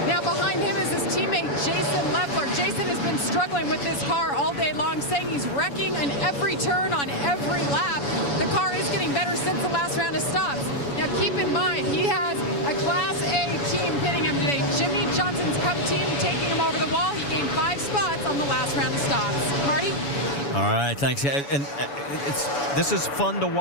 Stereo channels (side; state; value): right; late; 7.1 ms